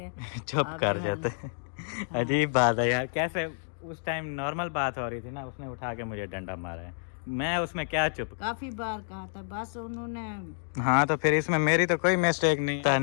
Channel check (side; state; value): right; silent; digital silence